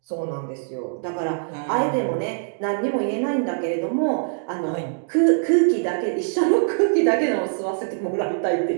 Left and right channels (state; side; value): silent; left; digital silence